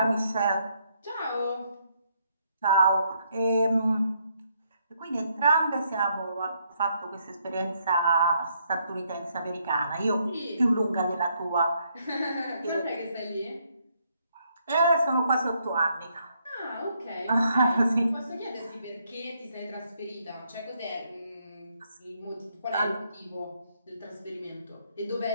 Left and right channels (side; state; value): both; inverted; correlation -0.73